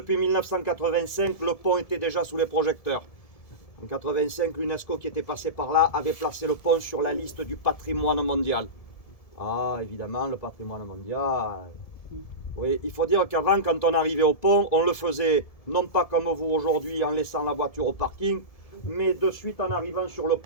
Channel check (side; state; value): right; late; 1.7 ms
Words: 1985, le pont était déjà sous les projecteurs. En 1985, l'UNESCO qui était passé par là avait placé le pont sur la liste du patrimoine mondial. Ah, évidemment, le patrimoine mondial. Oui, il faut dire qu'avant, quand on arrivait au pont, on le faisait non pas comme vous aujourd'hui en laissant la voiture au parking, mais de suite en arrivant sur le